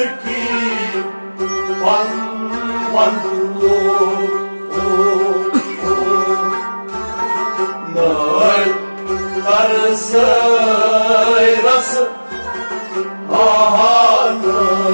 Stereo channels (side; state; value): both; inverted; correlation -1.00